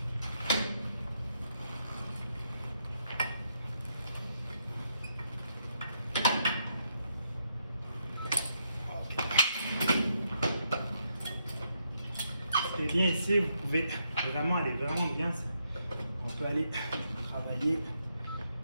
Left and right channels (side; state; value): both; inverted; correlation -0.78